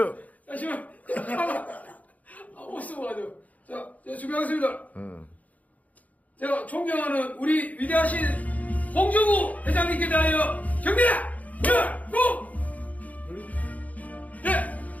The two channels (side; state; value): right; late; 0.074 ms